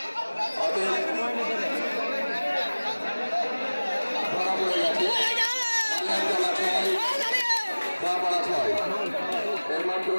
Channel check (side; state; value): both; inverted; correlation -1.00